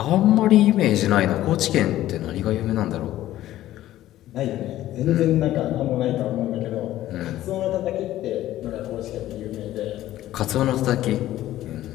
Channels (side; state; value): right; quieter; 14.1 dB